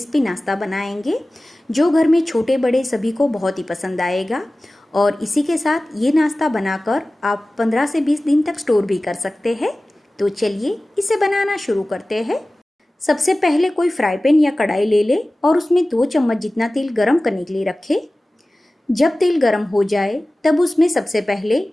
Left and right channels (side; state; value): both; normal; correlation 0.97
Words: नाश्ता बनाएंगे जो घर में छोटे बड़े सभी को बहुत ही पसंद आएगा। और इसी के साथ ये नाश्ता बनाकर आप 15 से 20 दिन तक स्टोर भी कर सकते हैं। तो चलिए इसे बनाना शुरू करते हैं। सबसे पहले कोई फ्राई पैन या कढ़ाई ले ले और उसमें 2 चम्मच जितना तेल गरम करने के लिए रखें। जब तेल गरम हो जाए तब उसमें सबसे पहले